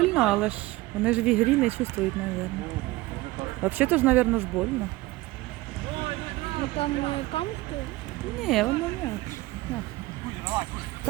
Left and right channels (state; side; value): quieter; left; 19.6 dB